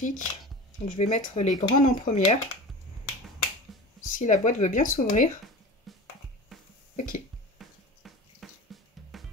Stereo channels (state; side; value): normal; both; correlation 0.34